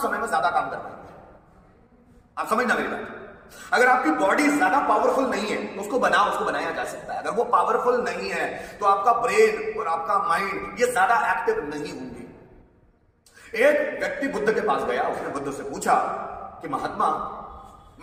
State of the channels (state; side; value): identical; both; correlation 1.00